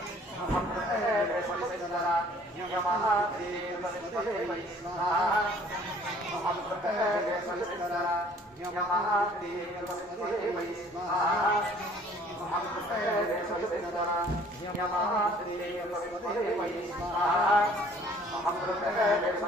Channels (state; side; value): normal; both; correlation 0.55